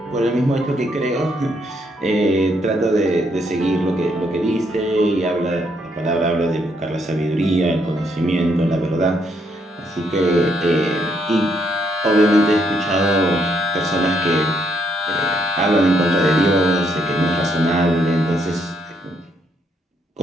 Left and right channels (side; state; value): both; normal; correlation 0.74